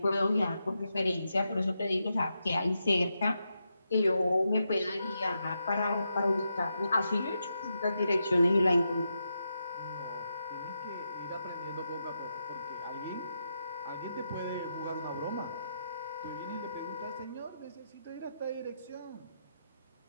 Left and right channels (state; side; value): inverted; both; correlation -0.85